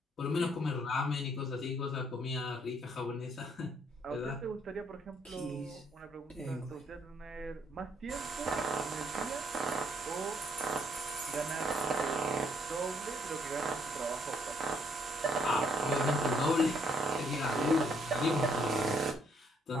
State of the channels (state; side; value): normal; both; correlation 0.68